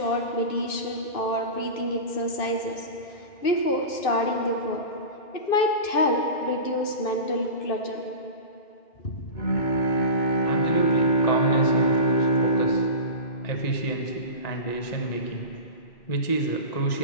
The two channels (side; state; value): right; late; 2.6 ms